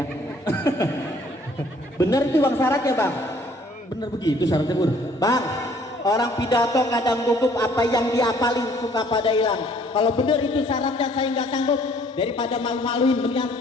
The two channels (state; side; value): normal; both; correlation 0.60